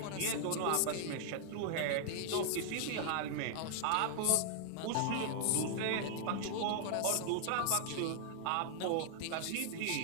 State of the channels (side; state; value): both; different; correlation 0.00